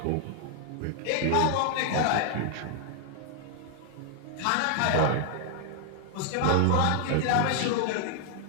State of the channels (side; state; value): both; different; correlation 0.00